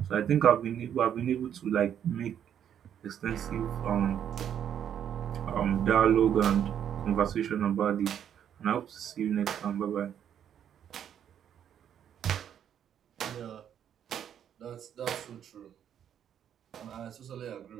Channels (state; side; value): quieter; left; 9.4 dB